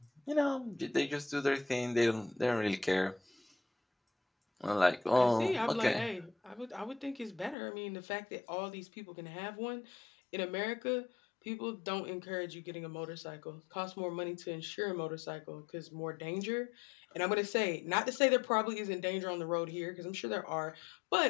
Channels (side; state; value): right; drops out; at 7.6 s